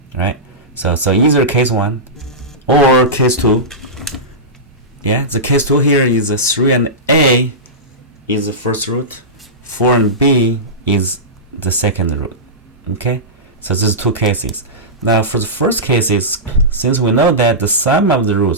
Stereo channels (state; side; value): normal; both; correlation -0.15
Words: right? So either case 1 or case 2. Yeah, the case 2 here is 3 and A is the first root, 4 and B is the second root. Okay, so there's two cases. Now for the first cases, since we know that the sum of the